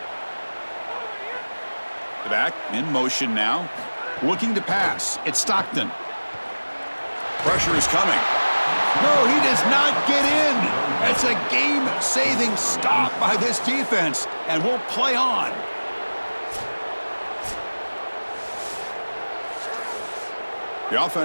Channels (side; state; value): both; inverted; correlation -1.00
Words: Back in motion now. Looking to pass. It's Stockton. Pressure is coming. No, he does not get in. It's a game-saving stop by this defense, and we'll play on. The